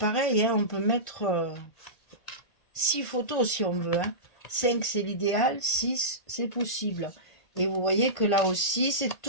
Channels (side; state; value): right; late; 1.5 ms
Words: hein, on peut mettre 6 photos si on veut. Hein. 5 c'est l'idéal, 6 c'est possible. Et vous voyez que là aussi, c'est